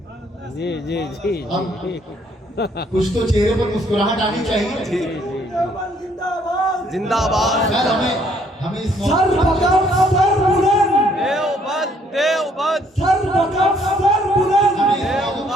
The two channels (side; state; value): both; normal; correlation 0.65